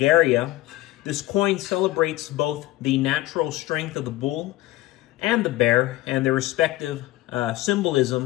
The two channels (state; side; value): quieter; right; 17.3 dB